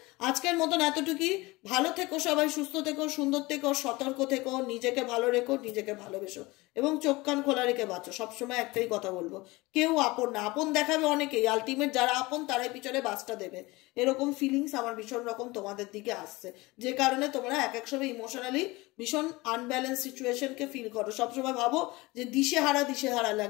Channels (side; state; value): right; quieter; 22.1 dB